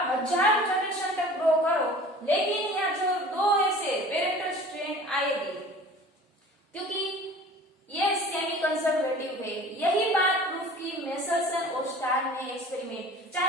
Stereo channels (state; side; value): normal; both; correlation 0.44